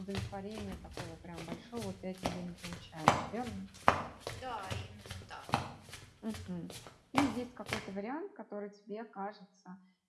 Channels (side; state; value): both; identical; correlation 1.00